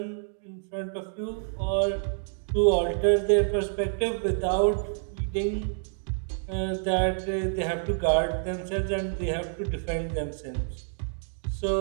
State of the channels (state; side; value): silent; left; digital silence